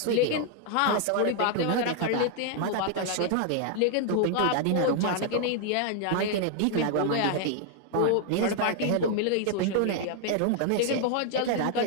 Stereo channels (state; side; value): different; both; correlation 0.00